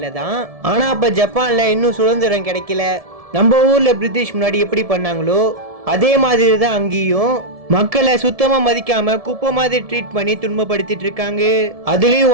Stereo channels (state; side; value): late; left; 1.7 ms